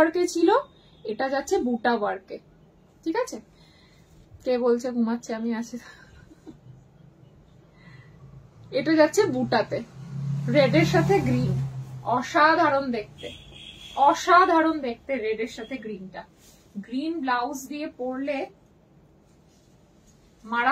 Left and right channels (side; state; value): both; identical; correlation 1.00